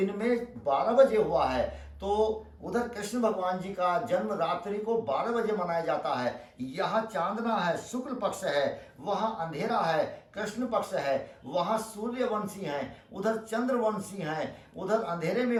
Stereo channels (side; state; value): both; identical; correlation 1.00